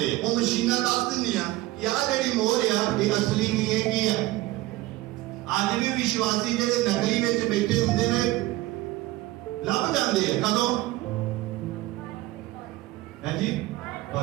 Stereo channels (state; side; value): quieter; left; 17.8 dB